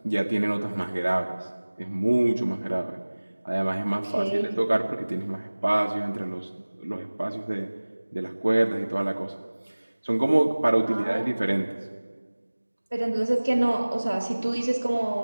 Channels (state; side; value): inverted; both; correlation -1.00